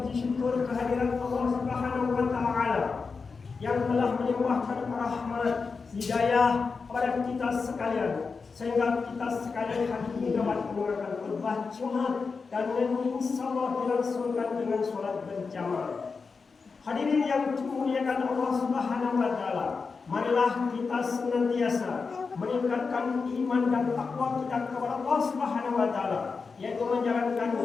syukur kehadiran Allah Subhanahu wa taala yang telah melimpahkan rahmat hidayah kepada kita sekalian, sehingga kita sekalian hari ini dapat mendengarkan khutbah Jumat dan insyaallah dilangsungkan dengan sholat berjamaah. Hadirin yang dimuliakan Allah Subhanahu wa taala, marilah kita senantiasa meningkatkan iman dan takwa kita kepada Allah Subhanahu wa taala, yaitu menjalankan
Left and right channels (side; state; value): right; quieter; 4.8 dB